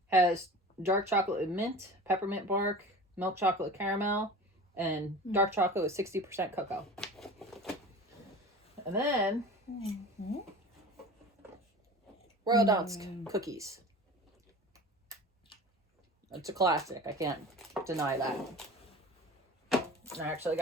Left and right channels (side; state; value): both; normal; correlation 0.37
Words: Has dark chocolate with mint, peppermint bark, milk chocolate with caramel, and dark chocolate with 60% cocoa. And then Royal Dansk cookies. It's a classic. I can't deny that. And I actually